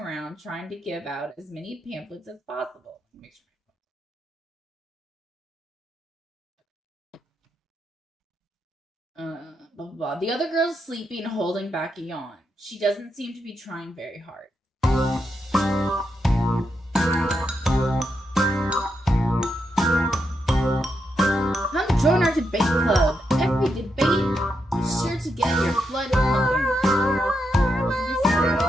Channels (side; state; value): both; normal; correlation 0.83